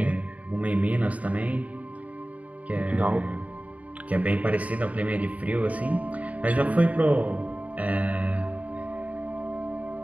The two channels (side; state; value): left; late; 0.070 ms